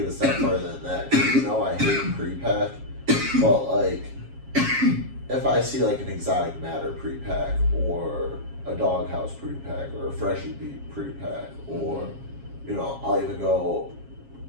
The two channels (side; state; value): left; late; 7.3 ms